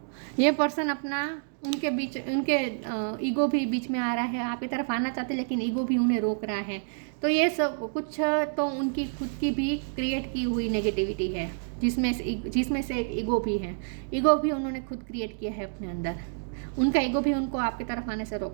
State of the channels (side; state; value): left; silent; digital silence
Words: ये पर्सन अपना उनके ईगो भी बीच में आ रहा है, आपकी तरफ आना चाहते लेकिन ईगो भी उन्हें रोक रहा है। तो ये सब कुछ तो उनकी खुद की भी क्रिएट की हुई नेगेटिविटी है, जिसमें से एक ईगो भी है। ईगो भी उन्होंने खुद क्रिएट किया है अपने अंदर, उनका ईगो भी उनको आपकी तरफ आने से